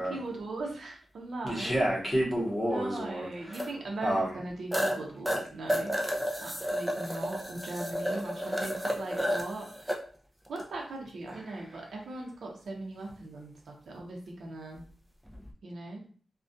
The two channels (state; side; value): normal; both; correlation 0.92